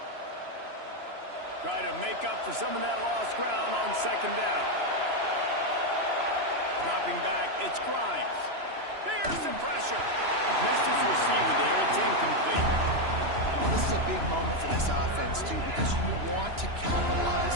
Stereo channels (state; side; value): late; left; 3.0 ms